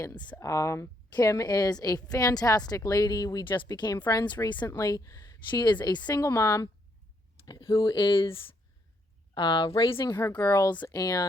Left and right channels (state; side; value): normal; both; correlation 0.74